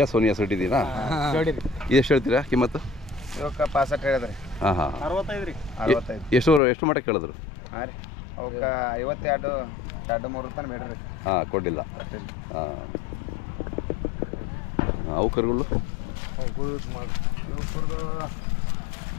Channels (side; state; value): right; drops out; at 6.6 s